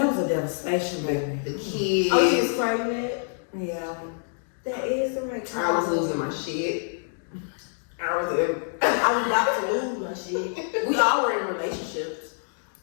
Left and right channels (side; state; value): right; silent; digital silence